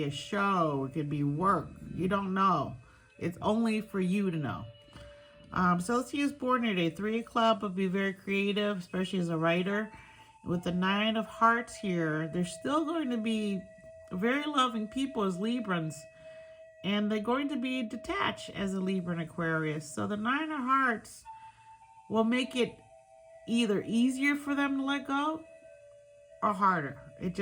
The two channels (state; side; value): identical; both; correlation 1.00